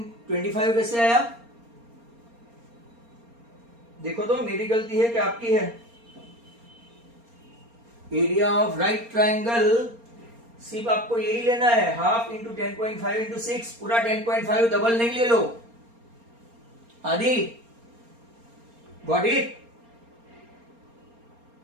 कैसे आया? देखो तो मेरी गलती है कि आपकी है? एरिया ऑफ राइट ट्रायंगल सिर्फ आपको यही लेना है, हाफ इंटू 10.5 इंटू 6, पूरा 10.5 डबल नहीं ले लो। आदि गॉट इट?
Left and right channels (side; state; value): left; late; 4.3 ms